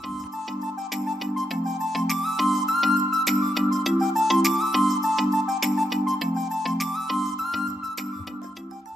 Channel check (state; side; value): normal; both; correlation 0.82